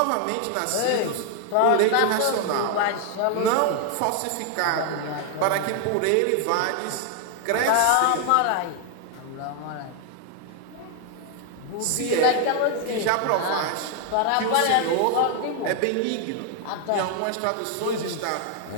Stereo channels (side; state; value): both; different; correlation 0.00